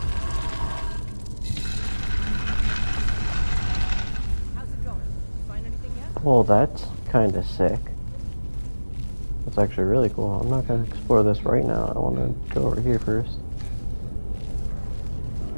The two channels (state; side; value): inverted; both; correlation -1.00